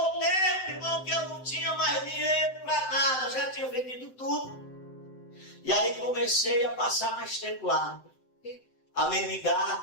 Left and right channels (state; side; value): late; right; 7.8 ms